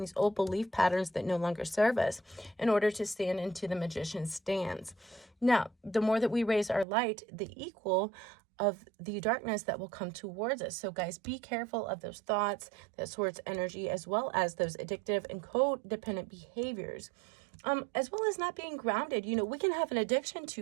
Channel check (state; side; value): drops out; left; at 6.9 s